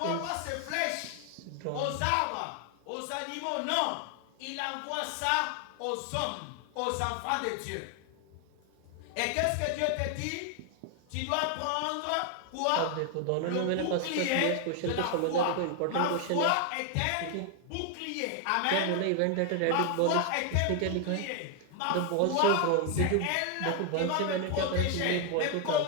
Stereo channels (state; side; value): different; both; correlation 0.00